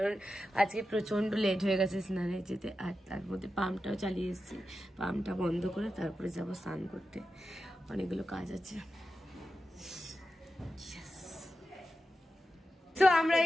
আজকে প্রচণ্ড লেট হয়ে গেছে স্নানে যেতে। আর তার মধ্যে পাম্পটাও চালিয়ে এসেছি, পাম্পটা বন্ধ করে তারপরে যাবো স্নান করতে, অনেকগুলো কাজ আছে। তো আমরা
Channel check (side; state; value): both; normal; correlation 0.91